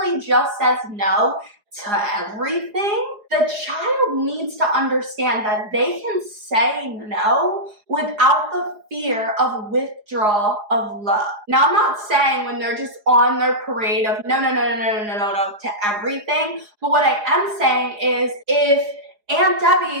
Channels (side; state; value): left; late; 4.8 ms